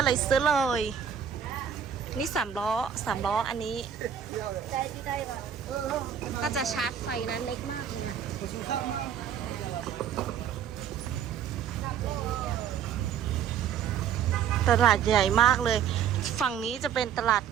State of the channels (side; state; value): left; quieter; 8.5 dB